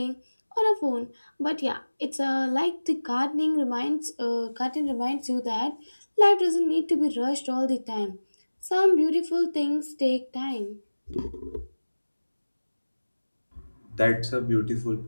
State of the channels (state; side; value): inverted; both; correlation -1.00